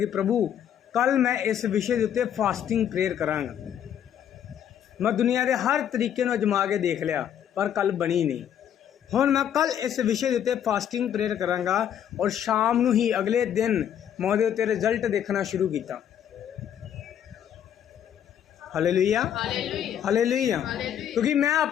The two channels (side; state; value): right; quieter; 9.6 dB